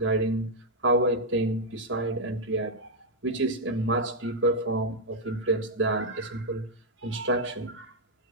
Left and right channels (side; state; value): both; normal; correlation -0.02